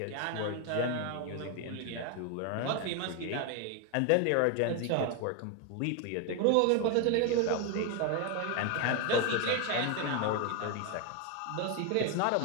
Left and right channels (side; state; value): both; different; correlation 0.01